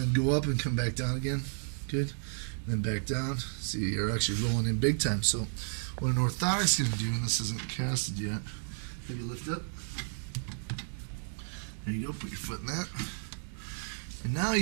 go up and come back down again. Good. And then back down. See, you're actually rolling in big time. So what an orthotic's going to do, and this isn't casted yet, have you lift up. There you go, put your foot in that. And now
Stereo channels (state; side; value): silent; left; digital silence